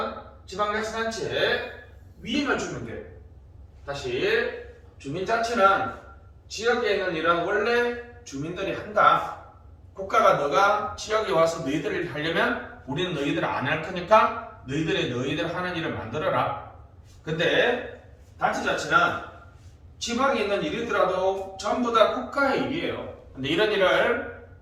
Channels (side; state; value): both; identical; correlation 1.00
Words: 지방자치단체에 위임을 주면 돼요. 다시 주민자치는 지역에 있는 일은 원래 주민들이 한다. 국가가 너가 지역에 와서 너희들 일 하려면 우리는 너희들 안 할 거니까 너희들 하는 일을 만들어라. 근데 단체자치는 지방에 있는 일이더라도 전부 다 국가의 일이에요. 근데 이런 일을